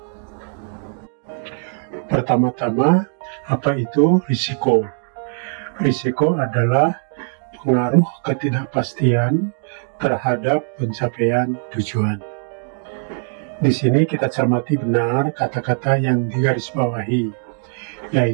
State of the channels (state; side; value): silent; left; 56 dB below the other